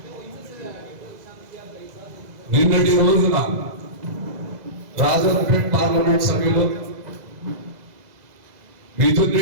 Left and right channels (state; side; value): late; left; 2.0 ms